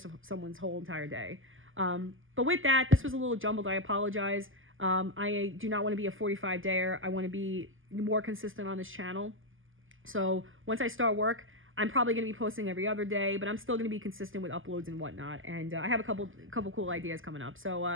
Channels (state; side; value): late; left; 0.58 ms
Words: of someone's whole entire day. But with that, this was a little jumbled. I apologize. I do not want to be a 45-dayer. I want to be more consistent on this channel. So once I start work, I'm probably going to be posting every other day, but I'm still going to be consistent with uploads and whatnot. And I have a couple cool ideas coming up.